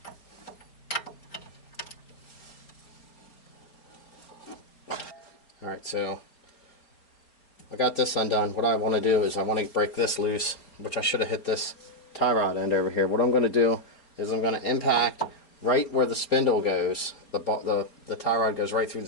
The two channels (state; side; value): late; right; 4.4 ms